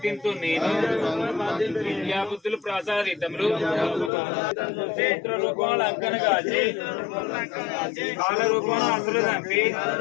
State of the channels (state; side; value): drops out; right; at 4.1 s